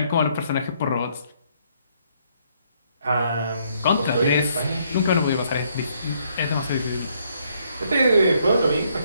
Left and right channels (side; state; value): both; inverted; correlation -0.70